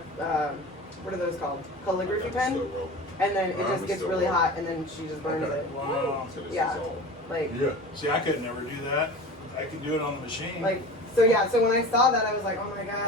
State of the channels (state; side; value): normal; both; correlation 0.35